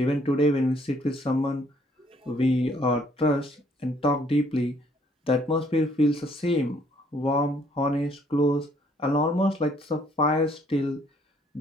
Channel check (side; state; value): both; normal; correlation 0.64